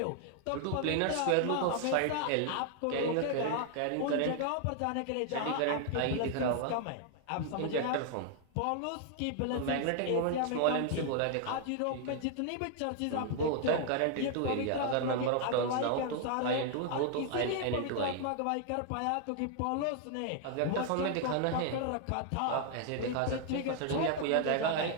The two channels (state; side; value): different; both; correlation 0.00